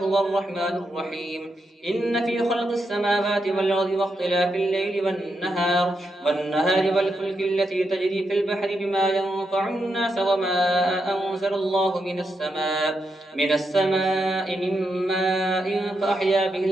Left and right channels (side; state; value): both; normal; correlation 0.83